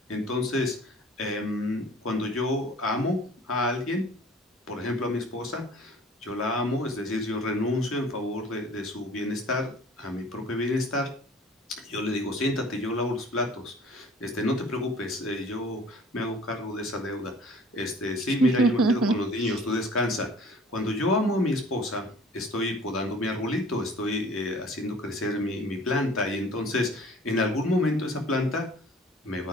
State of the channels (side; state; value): both; normal; correlation 0.49